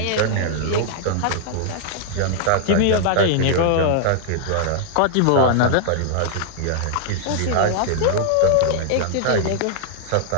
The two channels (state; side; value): different; both; correlation 0.00